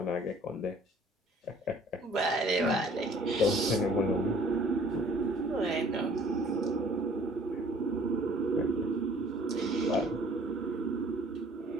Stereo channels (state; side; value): normal; both; correlation 0.54